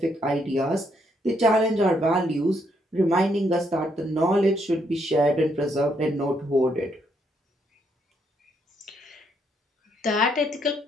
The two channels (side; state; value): both; normal; correlation 0.74